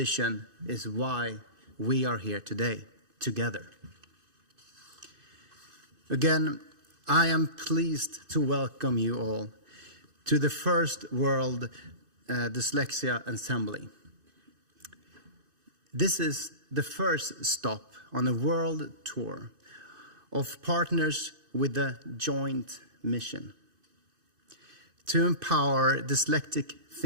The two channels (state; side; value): late; left; 2.6 ms